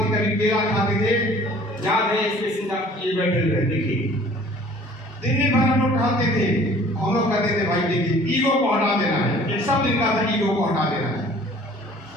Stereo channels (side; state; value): both; normal; correlation 0.51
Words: कभी केला खाते थे। याद है इसके सिंह ये बैठे हुए देखिए, दिन भर हम लोग टहलते थे। हम लोग कहते थे भाई देखिए ईगो को हटा देना है, एक सब दिन का था ईगो को हटा देना है।